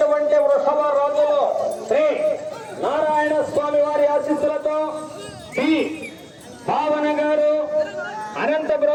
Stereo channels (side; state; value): both; identical; correlation 1.00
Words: వృషభ రాజులు శ్రీ నారాయణ స్వామి వారి ఆశీస్సులతో పి భావన గారు